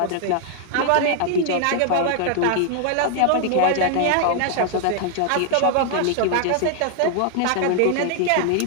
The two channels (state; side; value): different; both; correlation 0.00